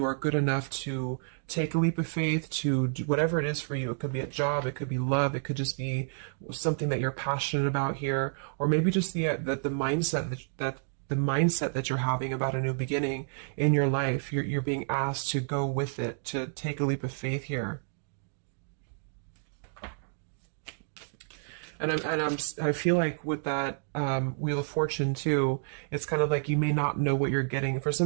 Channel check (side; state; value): left; silent; digital silence